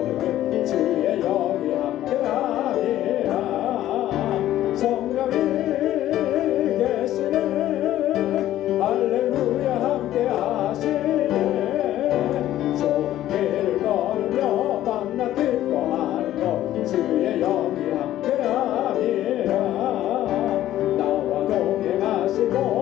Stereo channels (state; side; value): quieter; right; 13.3 dB